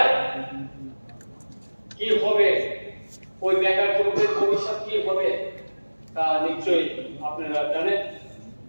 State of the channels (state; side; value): inverted; both; correlation -1.00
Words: কি হবে, ওই বেকার যুবকের ভবিষ্যৎ কি হবে তা নিশ্চয়ই আপনারা জানেন।